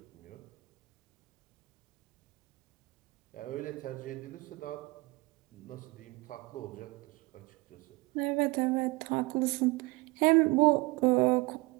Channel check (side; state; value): left; quieter; 24.0 dB